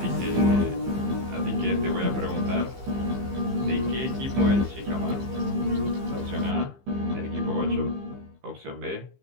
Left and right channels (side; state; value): left; late; 15 ms